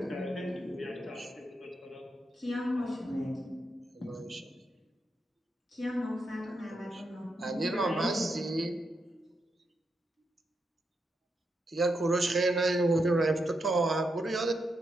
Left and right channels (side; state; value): both; normal; correlation 0.83